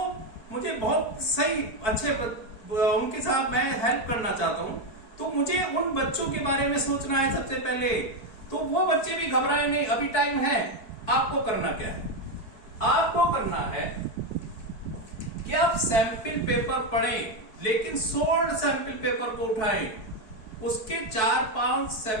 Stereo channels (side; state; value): right; late; 4.5 ms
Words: मुझे बहुत सही अच्छे उनके साथ मैं हेल्प करना चाहता हूं, तो मुझे उन बच्चों के बारे में सोचना है सबसे पहले। तो वो बच्चे भी घबराए नहीं, अभी टाइम है। आपको करना क्या है? आपको करना है कि आप सैंपल पेपर पढ़ें, लेकिन सोल्ड सैंपल पेपर को उठाएं। उसके 4-5